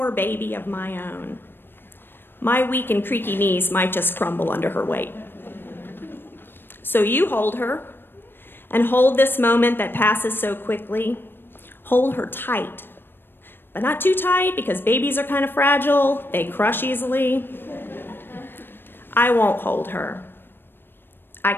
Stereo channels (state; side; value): late; right; 0.099 ms